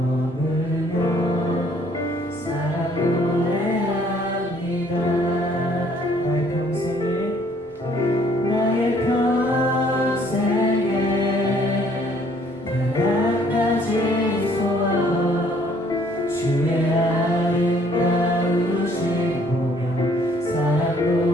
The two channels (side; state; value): both; normal; correlation 0.62